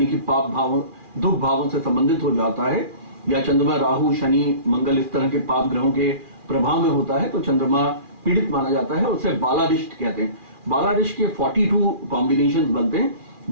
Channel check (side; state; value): left; late; 2.4 ms